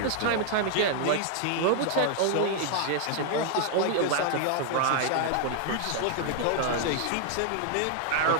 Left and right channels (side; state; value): both; different; correlation 0.00